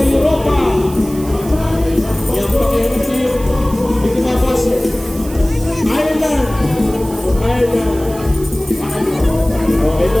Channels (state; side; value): noise; right; hiss, 17 dB below the sound